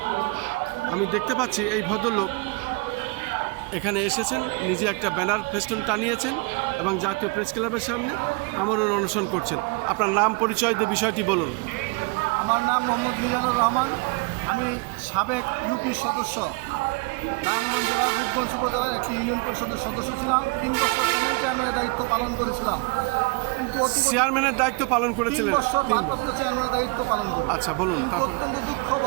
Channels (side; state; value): left; quieter; 29.4 dB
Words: আমি দেখতে পাচ্ছি এই ভদ্রলোক এখানে এসেছেন, নিজে একটা ব্যানার ফেস্টুন টানিয়েছেন এবং জাতীয় প্রেস ক্লাবের সামনে আমরণ অনশন করছেন। আপনার নাম, পরিচয় দিয়ে বিষয়টি বলুন। আমার নাম মোহাম্মদ মিজানুর রহমান। আমি সাবেক ইউপি সদস্য, নারায়ণগঞ্জ জেলার রূপগঞ্জ উপজেলার একটি ইউনিয়ন পরিষদের সদস্য ছিলাম। 3 বছর প্যানেল চেয়ারম্যানের দায়িত্ব পালন করেছিলাম। কিন্তু চেয়ারম্যানের দায়িত্ব পালন 3 করেছিলেন? বছর ভারপ্রাপ্ত চেয়ারম্যানের দায়িত্ব পালন করি। আচ্ছা, বলুন। কিন্তু অত্যন্ত দুঃখ